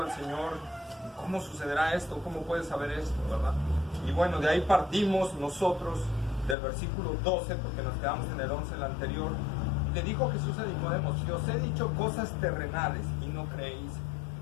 al Señor, ¿cómo sucederá esto? ¿Cómo puedes saber esto, verdad? Y bueno, de ahí partimos nosotros del versículo 12, porque nos quedamos en el 11 el anterior. Le dijo Jesús a Nicodemo, si os he dicho cosas terrenales y no creéis,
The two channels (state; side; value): drops out; right; at 6.6 s